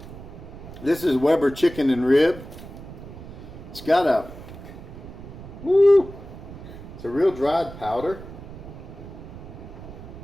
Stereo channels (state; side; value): noise; right; rumble, 14 dB below the sound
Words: This is Weber chicken and rib. It's got a, it's a real dried powder.